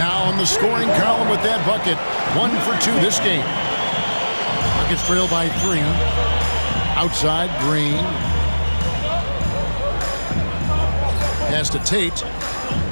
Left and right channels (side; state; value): both; inverted; correlation -1.00